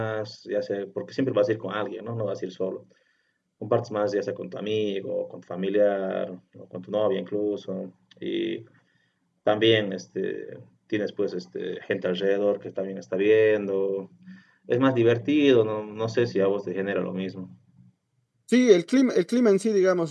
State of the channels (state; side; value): identical; both; correlation 1.00